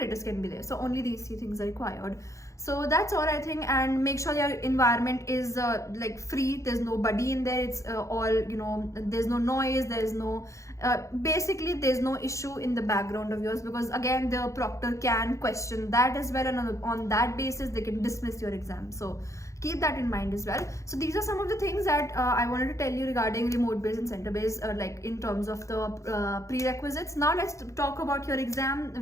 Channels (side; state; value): right; late; 0.15 ms